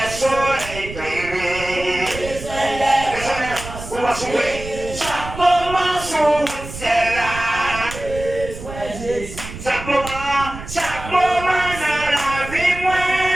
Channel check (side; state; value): right; noise; rumble, 11 dB below the sound